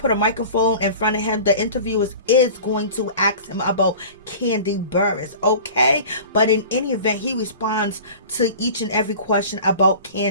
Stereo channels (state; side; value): inverted; both; correlation -0.40